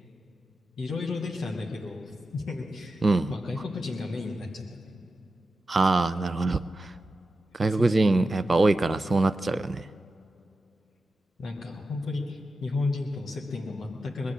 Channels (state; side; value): normal; both; correlation 0.91